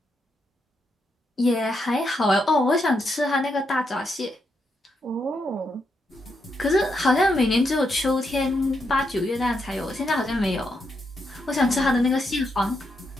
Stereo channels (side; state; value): both; normal; correlation 0.81